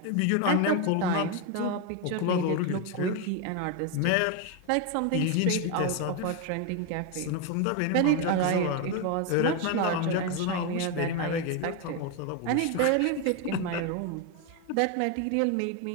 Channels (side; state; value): both; different; correlation 0.02